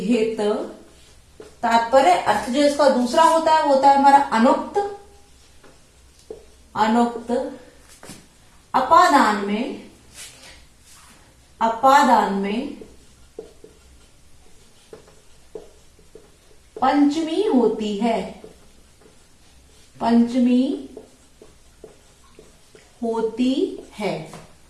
तात्पर्य अर्थ जो इसका दूसरा होता है वो होता है हमारा अनुक्त, अनुक्त। अपादान में, अपादान में पंचमी होती है, पंचमी होती है।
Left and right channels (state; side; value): identical; both; correlation 1.00